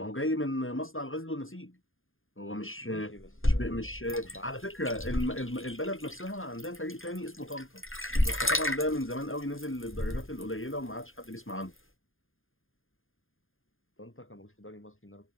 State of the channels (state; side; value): late; right; 0.59 ms